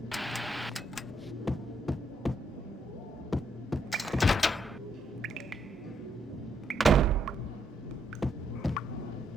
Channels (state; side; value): normal; both; correlation 0.75